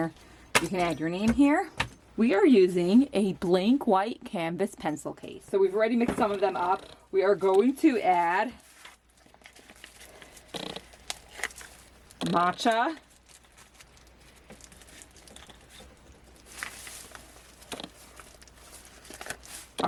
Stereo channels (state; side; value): identical; both; correlation 1.00